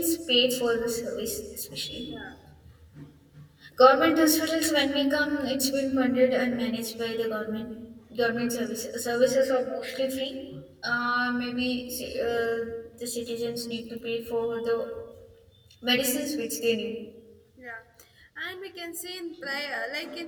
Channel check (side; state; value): both; identical; correlation 1.00